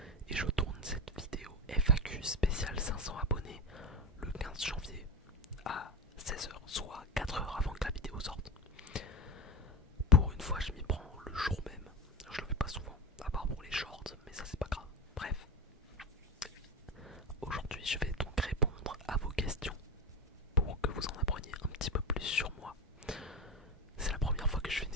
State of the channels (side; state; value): both; normal; correlation 0.20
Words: Et je tourne cette vidéo FAQ spéciale 500 abonnés le 15 janvier à 16h, soit 4 heures avant que la vidéo sorte. Pour une fois, je m'y prends le jour même. Je le fais pas souvent, à part pour les shorts, mais ça c'est pas grave. Bref, aujourd'hui je vais donc répondre à vos questions pour que vous en appreniez un petit peu plus sur moi. C'est la première fois que je fais une